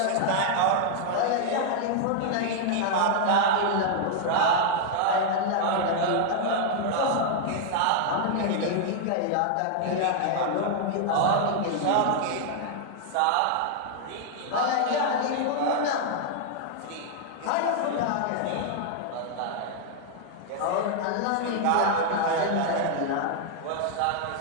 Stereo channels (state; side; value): different; both; correlation -0.01